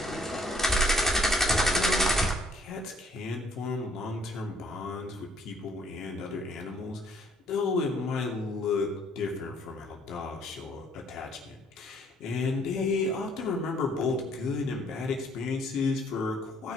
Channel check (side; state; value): both; normal; correlation 0.63